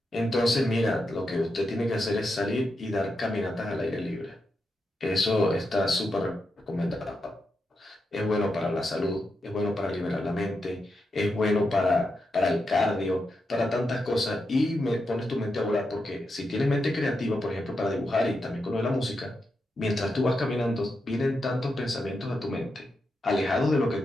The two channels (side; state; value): both; normal; correlation 0.86